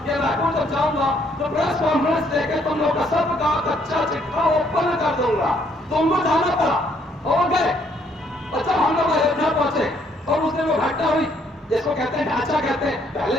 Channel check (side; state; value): both; normal; correlation 0.67